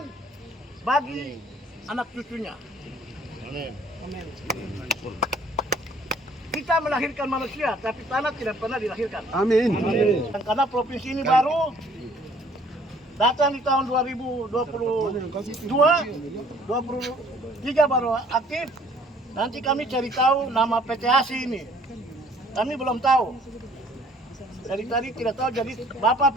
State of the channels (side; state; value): both; normal; correlation 0.58